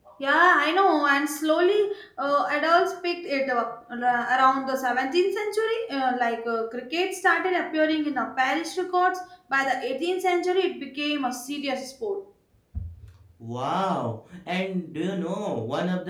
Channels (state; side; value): identical; both; correlation 1.00